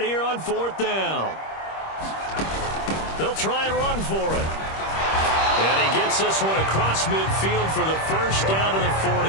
here on 4th down. They'll try and run for it. And he gets this one across midfield for the first down to the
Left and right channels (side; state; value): right; late; 26 ms